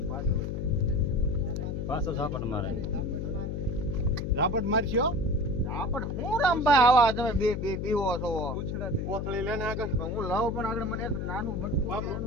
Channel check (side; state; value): left; noise; hum, 2 dB below the sound